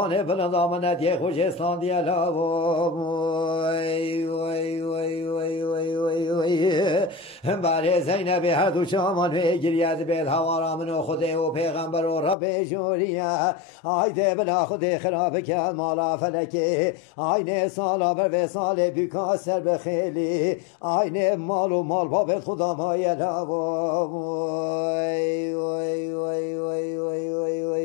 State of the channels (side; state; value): right; drops out; at 12.4 s